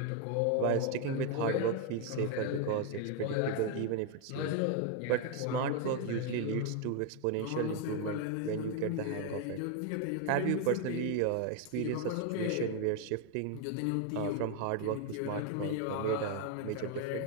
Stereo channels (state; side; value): different; both; correlation 0.01